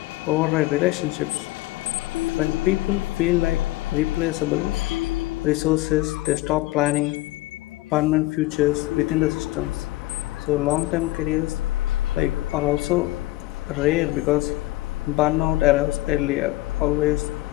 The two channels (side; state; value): right; quieter; 18.2 dB